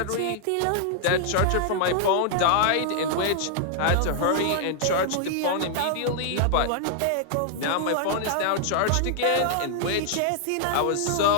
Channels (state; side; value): different; both; correlation -0.01